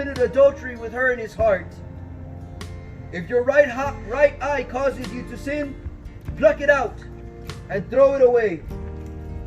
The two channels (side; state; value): both; identical; correlation 1.00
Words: adultery with her in his heart. If your right eye causes you to sin, pluck it out and throw it away.